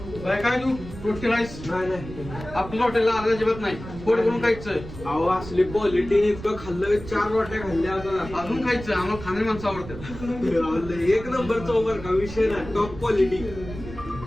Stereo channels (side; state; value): right; noise; rumble, 13 dB below the sound